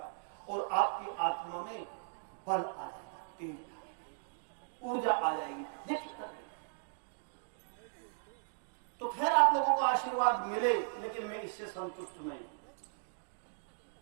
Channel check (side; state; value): left; silent; digital silence